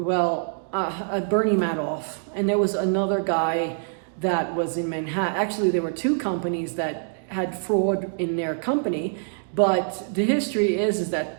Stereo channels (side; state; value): left; silent; digital silence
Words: and there was another guy that was in Manhattan. Actually, there were 2 companies that had fraud in their company, but the history is